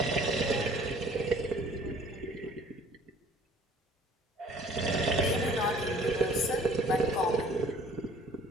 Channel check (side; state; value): both; normal; correlation 0.53